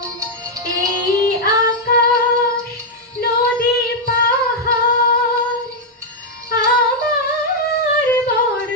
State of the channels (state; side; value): normal; both; correlation -0.02